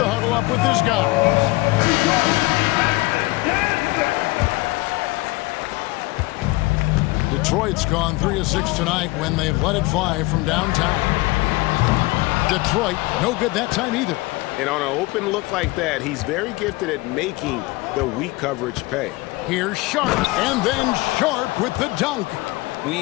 huddle up with his guys. Detroit's gone 3 of 6 tonight when they've let it fly from downtown. Detroit, no good that time either. And on an open look like that, he's very gifted at making the weak coverage pay. Here's Sharp, and then Sharp with the dunk.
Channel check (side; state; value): right; quieter; 21.7 dB